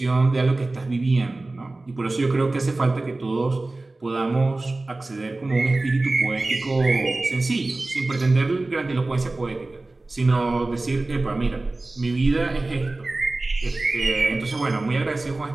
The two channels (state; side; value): quieter; left; 3.0 dB